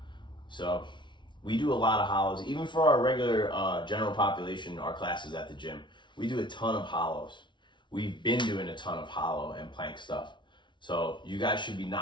So we do a lot of hollows. Even for our regular general population, our classes at the gym, we do a ton of hollows. We've been doing a ton of hollow and plank stuff. So you guys should be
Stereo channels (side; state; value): right; late; 0.23 ms